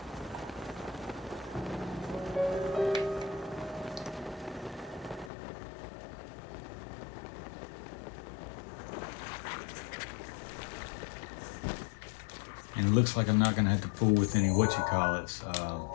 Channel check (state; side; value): drops out; right; at 5.3 s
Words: And it looks like I'm not going to have to fool with any